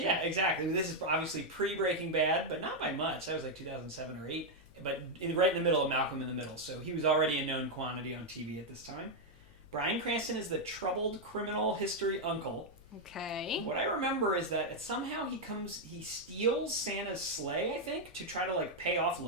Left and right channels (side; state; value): left; noise; hum, 24 dB below the sound